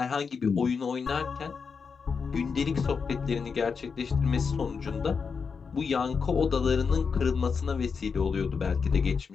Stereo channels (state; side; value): quieter; right; 5.6 dB